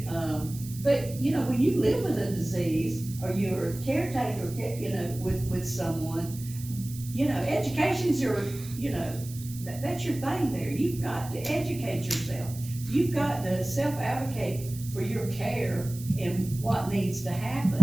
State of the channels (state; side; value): noise; right; hiss, 15 dB below the sound